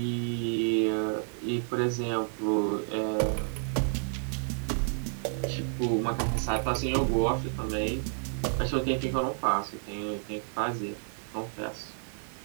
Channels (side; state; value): left; silent; 58 dB below the other